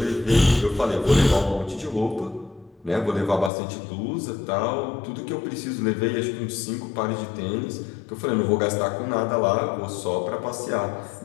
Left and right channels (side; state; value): right; drops out; at 3.5 s